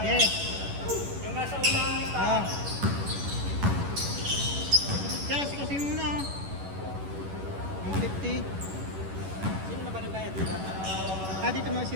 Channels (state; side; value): late; left; 11 ms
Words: Yeah. Yung nasa unang lista. Kaya kasi muna. 150. Sino na ba nagbayad dito? Dito mga si